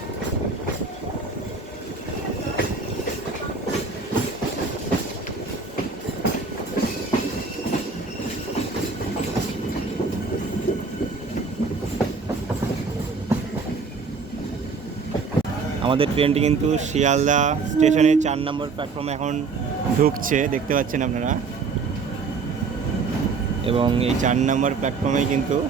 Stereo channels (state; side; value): quieter; left; 4.7 dB